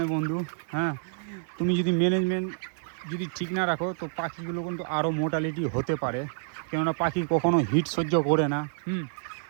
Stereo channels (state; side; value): silent; left; 59 dB below the other